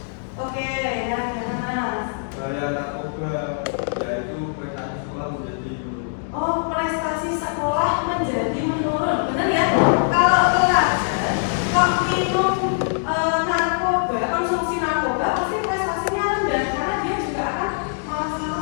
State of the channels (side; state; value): right; silent; digital silence